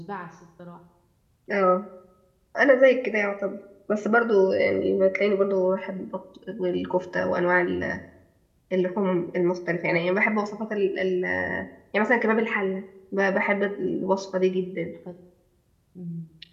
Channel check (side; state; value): both; identical; correlation 1.00